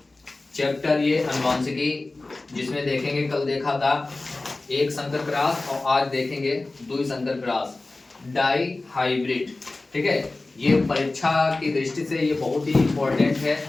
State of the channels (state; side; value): quieter; right; 3.2 dB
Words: चैप्टर ये अनुवांशिकी, जिसमें देखेंगे कल देखा था एक संकर क्रॉस और आज देखेंगे दुई संकर क्रॉस डाई हाइब्रिड। ठीक है, ये परीक्षा की दृष्टि से ये बहुत ही इम्पोर्टेंट है